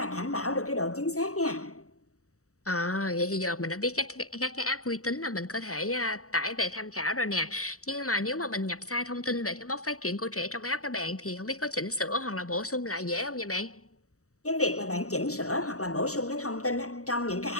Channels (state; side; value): late; right; 0.65 ms